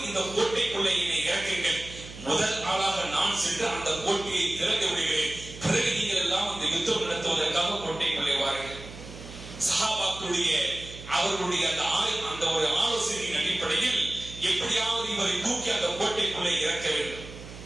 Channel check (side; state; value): right; noise; hum, 14 dB below the sound